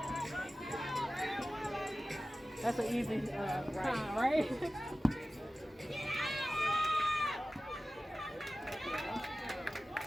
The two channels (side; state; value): both; normal; correlation 0.96